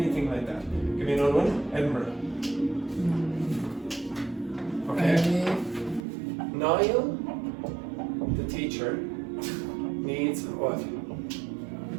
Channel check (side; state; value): left; drops out; at 6.1 s